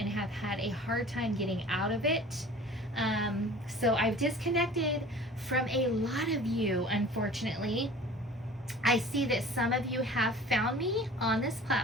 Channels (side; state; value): both; normal; correlation 0.43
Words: have had a hard time getting out of it. So I've disconnected from a lot of you, unfortunately. I see that some of you have found me on this